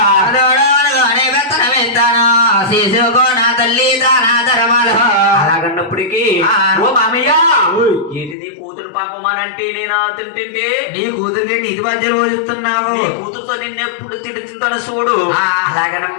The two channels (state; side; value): drops out; right; at 8.3 s